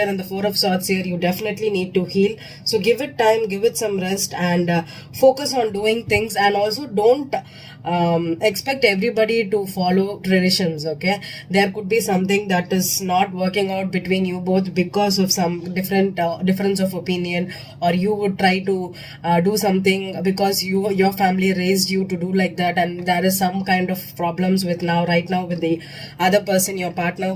and the Four of Swords here, you definitely need to heal. So give it time, give it some rest, and focus on doing things. And also don't expect everybody to follow traditions, okay? There could be something that is not working out between you both because of some difference of opinion, or you would try to do something because your family raised you to do like that, and there is some kind of problems with right now with the other person, your partner,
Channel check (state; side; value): identical; both; correlation 1.00